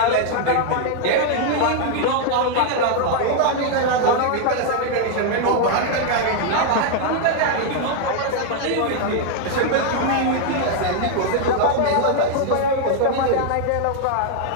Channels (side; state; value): both; different; correlation 0.00